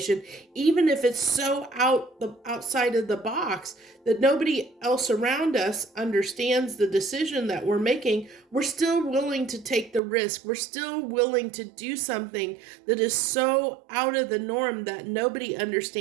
even if it's so outside of the box that nobody else around us understands the decision that we're making, we're still willing to take the risk. We're still willing to do something that is so out of the norm that nobody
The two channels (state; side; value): drops out; left; at 10.0 s